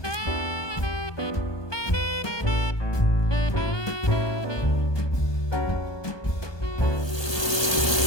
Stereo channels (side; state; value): right; late; 1.3 ms